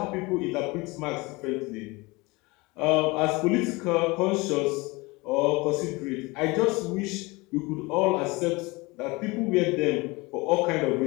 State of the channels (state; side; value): quieter; right; 24.1 dB